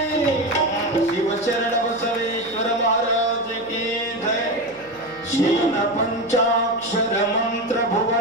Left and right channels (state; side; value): noise; left; hum, 26 dB below the sound